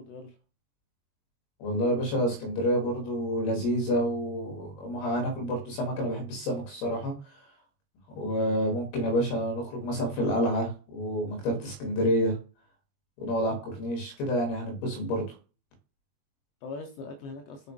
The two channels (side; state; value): right; late; 21 ms